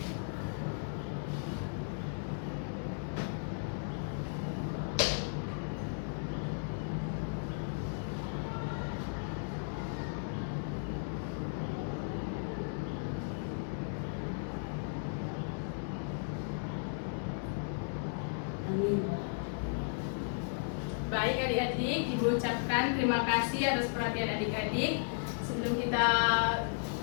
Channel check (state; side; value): silent; right; digital silence